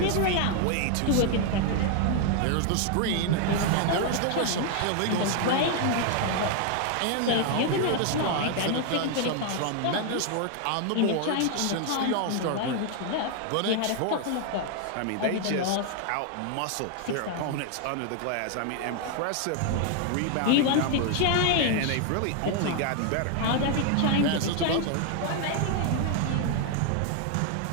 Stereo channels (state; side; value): different; both; correlation 0.00